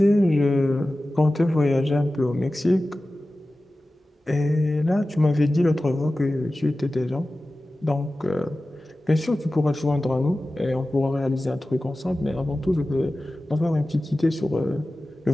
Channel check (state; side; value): normal; both; correlation 0.96